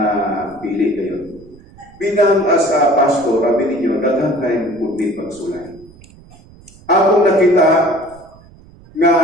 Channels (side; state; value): right; noise; rumble, 24 dB below the sound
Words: pili kayo. bilang as a pastor, sabi ninyo, daghang kayong pundi pagsulay. Akong nakita nga